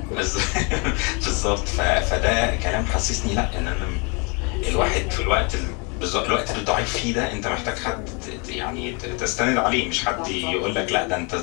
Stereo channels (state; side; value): quieter; right; 32.4 dB